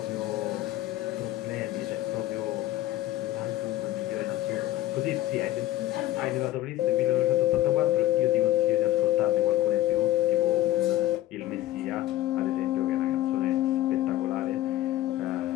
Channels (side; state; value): right; quieter; 14.2 dB